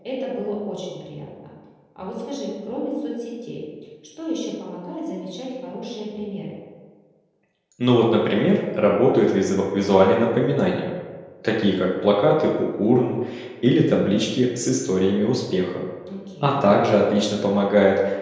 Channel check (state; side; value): identical; both; correlation 1.00